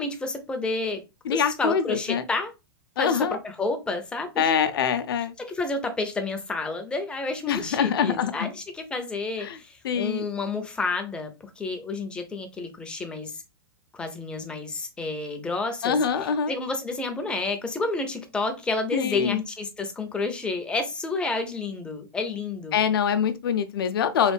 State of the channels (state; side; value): quieter; right; 5.0 dB